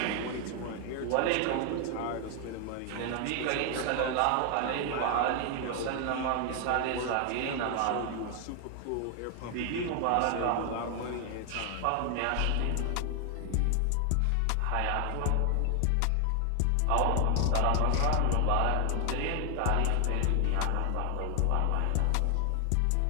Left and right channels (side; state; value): both; different; correlation 0.00